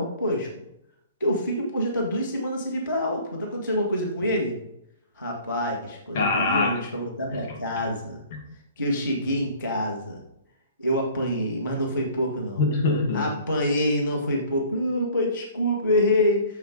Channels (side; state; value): both; inverted; correlation -0.50